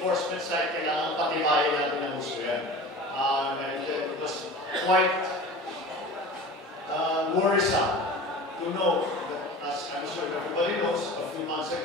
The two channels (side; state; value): both; normal; correlation 0.37